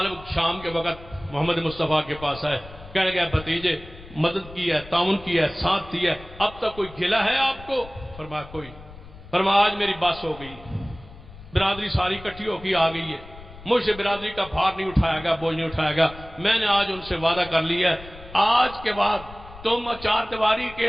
شام کے وقت محمد مصطفیٰ کے پاس آئے، کہنے گیا بھتیجے مدد کی ہے، تعاون کی ہے، ساتھ دیا ہے، اب تک کوئی گلہ ہے آپ کو؟ فرمایا کوئی. فرمایا آج میری بس ہو گئی، برادری ساری کٹھی ہو کے آ گئی ہے، مجھ سے برادری کا بھار نہیں اٹھایا گیا، بوجھ نہیں اٹھایا گیا. میں نے آج ان سے وعدہ کر لیا ہے آج کے بعد تم چار دیواری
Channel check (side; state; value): left; noise; rumble, 18 dB below the sound